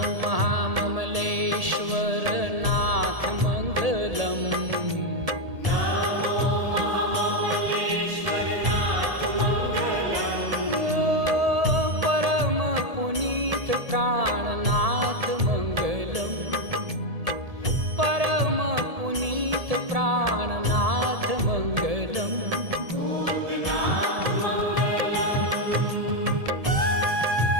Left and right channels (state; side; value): late; left; 1.7 ms